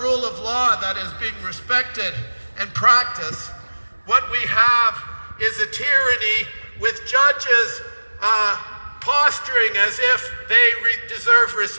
rule of law that is being respected and practiced. What we have is a tyranny with judges posturing as if they deserve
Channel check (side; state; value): both; inverted; correlation -1.00